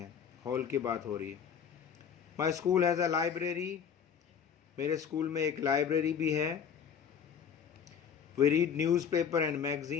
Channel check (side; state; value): right; quieter; 7.5 dB